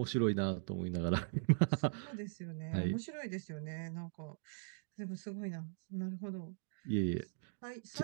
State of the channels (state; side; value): silent; left; digital silence